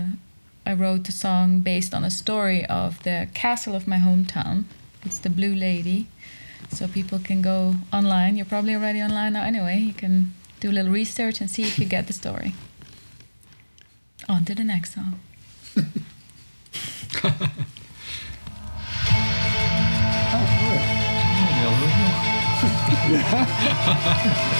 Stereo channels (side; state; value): both; inverted; correlation -1.00